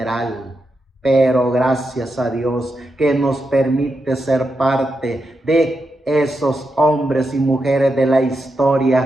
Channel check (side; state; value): both; normal; correlation 0.86